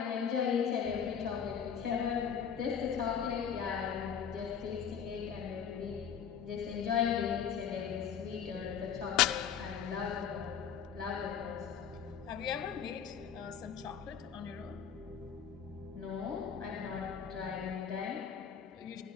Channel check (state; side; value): quieter; right; 7.7 dB